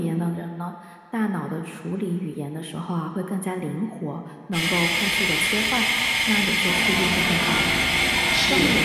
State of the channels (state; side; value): identical; both; correlation 1.00